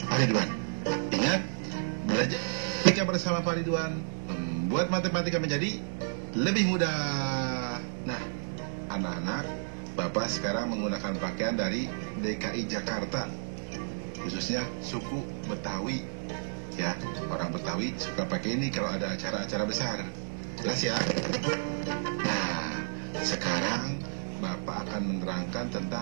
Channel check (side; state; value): left; silent; digital silence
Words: Pak Ridwan. Ingat, belajar matematika bersama Pak Ridwan membuat matematika menjadi lebih mudah. Nah, anak-anak, Bapak sekarang menggunakan pakaian dari DKI Jakarta, khususnya suku Betawi. Ya, orang Betawi suka pakai ini kalau ada acara-acara besar. Jelas ya? Nah, sekarang Bapak akan menerangkan